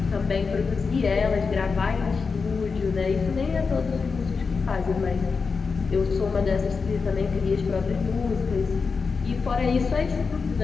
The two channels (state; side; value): quieter; right; 4.9 dB